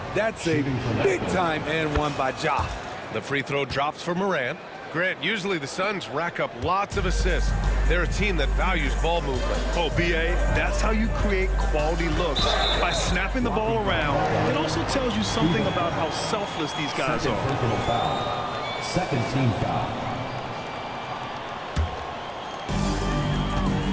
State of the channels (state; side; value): identical; both; correlation 1.00